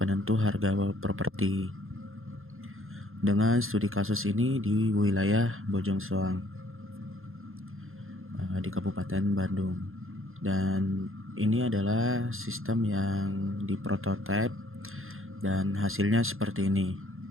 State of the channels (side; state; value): left; late; 0.61 ms